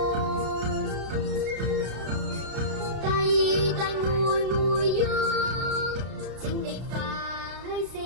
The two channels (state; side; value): late; left; 32 ms